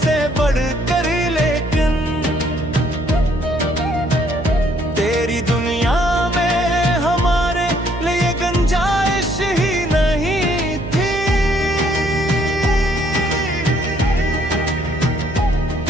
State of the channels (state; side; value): noise; right; hum, 9 dB below the sound